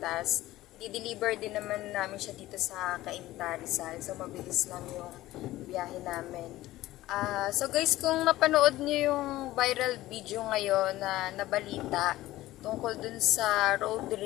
Di-deliver din naman namin siya dito sa Cainta, Rizal. So mabilis lang yung biyahe namin. So guys, kung napanood niyo yung viral video ngayon na nabalita tungkol dun sa road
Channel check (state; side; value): quieter; right; 16.3 dB